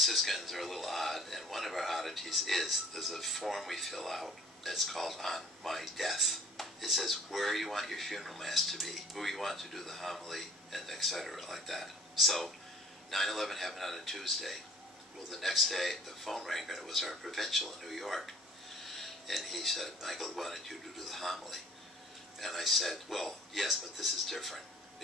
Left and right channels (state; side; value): normal; both; correlation 0.51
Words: Franciscans are a little odd, and one of our oddities is there's a form we fill out that's called On My Death. It says where you want your funeral mass to be, who you want to do the homily, and etc. like that. So 9/11 happened on a Tuesday. Well, the next day the phone rang, and it was our provincial in New York. And he said, Michael wanted you to do the homily. And I said, well, yes, but this is different.